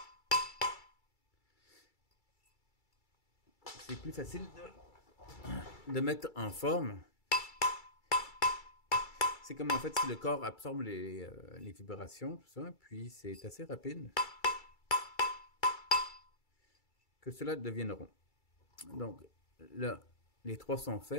c'est plus facile de mettre en forme. C'est comme en fait si le corps absorbe les vibrations, tout ça, puis c'est assez rapide que cela devienne rond. Donc là, les trois sont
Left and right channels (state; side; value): late; right; 2.3 ms